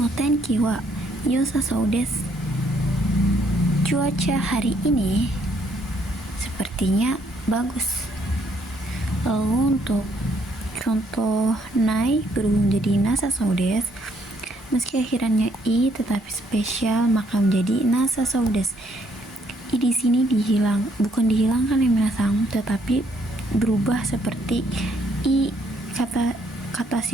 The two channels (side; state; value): both; normal; correlation 0.69